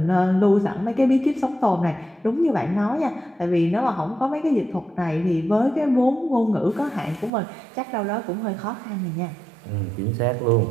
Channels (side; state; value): left; drops out; at 7.3 s